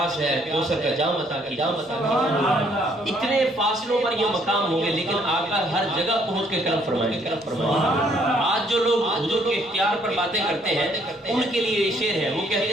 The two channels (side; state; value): both; normal; correlation 0.66